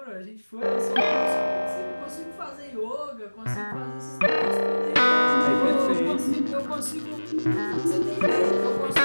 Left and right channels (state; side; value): inverted; both; correlation -1.00